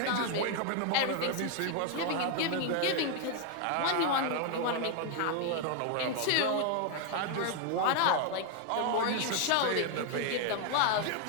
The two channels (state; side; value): different; both; correlation 0.00